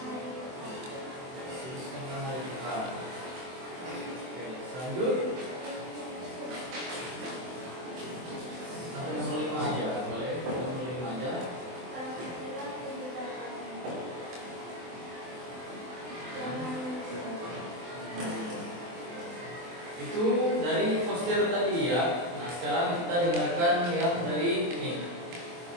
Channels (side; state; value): left; late; 23 ms